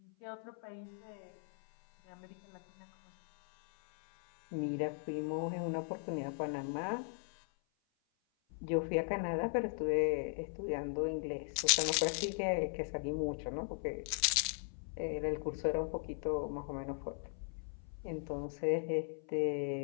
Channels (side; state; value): right; silent; 52 dB below the other